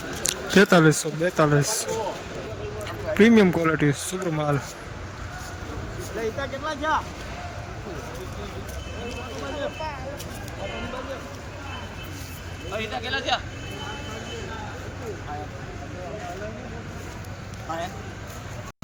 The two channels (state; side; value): identical; both; correlation 1.00